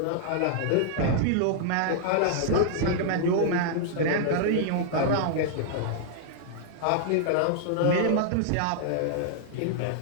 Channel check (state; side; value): different; both; correlation -0.01